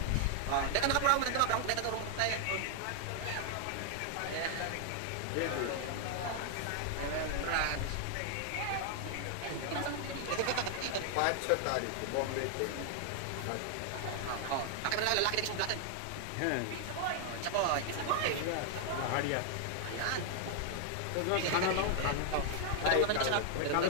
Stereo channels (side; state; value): both; different; correlation 0.00